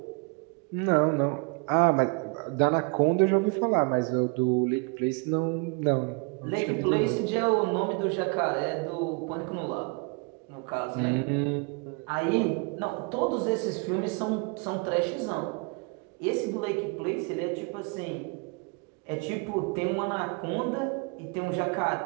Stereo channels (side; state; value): left; quieter; 32.8 dB